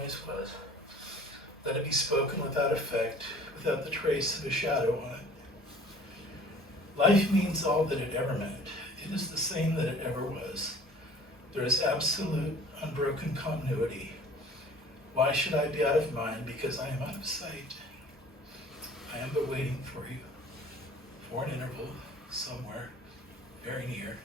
was. Let it be spoken without effect, without the trace of a shadow on it. Life means all that it ever meant. It is the same that it ever was. There is absolute, unbroken continuity. Why should I be out of mind? Because I am out of sight. I am but waiting for you, for an interval, somewhere, very near,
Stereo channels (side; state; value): both; normal; correlation 0.49